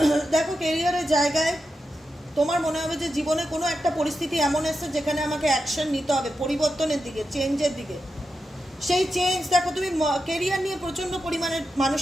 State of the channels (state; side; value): normal; both; correlation 0.88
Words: দেখো, কেরিয়ারের জায়গায় তোমার মনে হবে যে জীবনে কোনো একটা পরিস্থিতি এমন এসছে যেখানে আমাকে অ্যাকশন নিতে হবে পরিবর্তনের দিকে, চেঞ্জের দিকে। সেই চেঞ্জ, দেখো তুমি কেরিয়ার নিয়ে প্রচণ্ড পরিমাণে